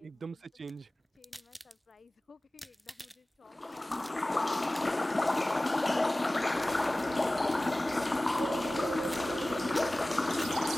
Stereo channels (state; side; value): normal; both; correlation 0.98